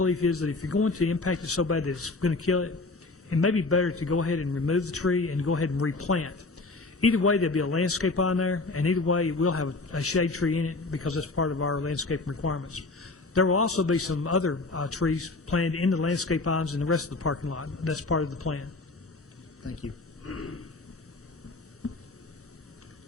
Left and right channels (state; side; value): quieter; right; 3.4 dB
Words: is that if you're going to impact it so bad that it's going to kill it, it may be better to go ahead and remove the tree and go ahead and replant. Either way, there'll be a landscape on there, and either way, it will have a shade tree in it because that's part of our landscape requirements. There will also be some other trees planted in the landscape ponds in the rest of the parking lot. That's part of the plan. Thank you.